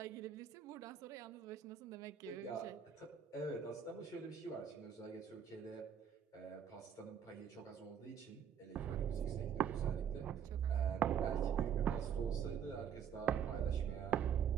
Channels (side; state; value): left; quieter; 8.2 dB